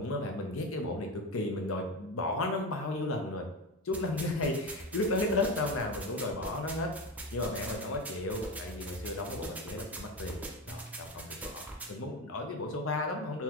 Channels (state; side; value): normal; both; correlation 0.20